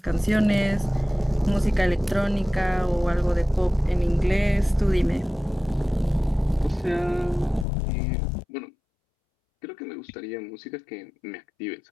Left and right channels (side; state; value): right; drops out; at 7.7 s